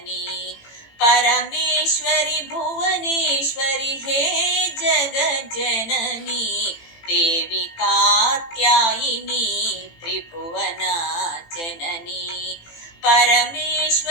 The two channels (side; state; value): right; late; 18 ms